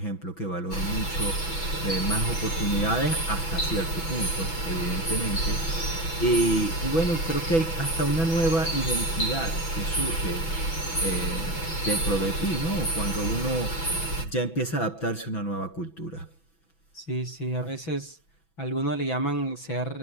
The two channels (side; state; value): right; late; 6.1 ms